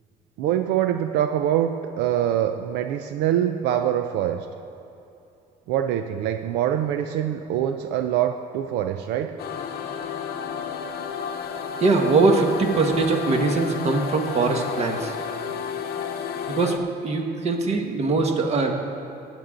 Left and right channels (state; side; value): quieter; left; 4.5 dB